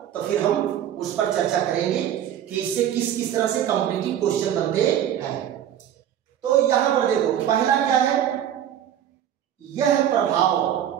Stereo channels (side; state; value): left; quieter; 10.5 dB